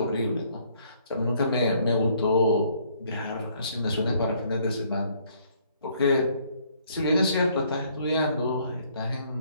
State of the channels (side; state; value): both; inverted; correlation -0.64